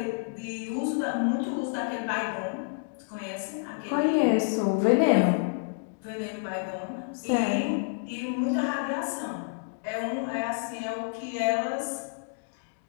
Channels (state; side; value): silent; right; digital silence